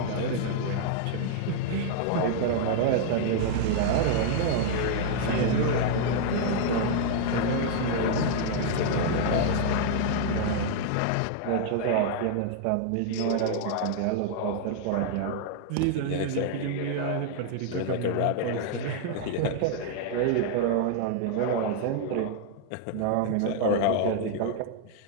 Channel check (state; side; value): different; both; correlation -0.01